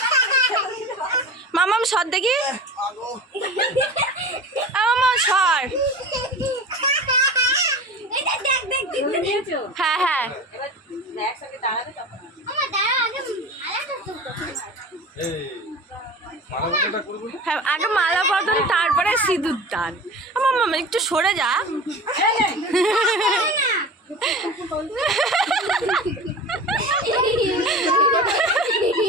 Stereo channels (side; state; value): both; normal; correlation 0.34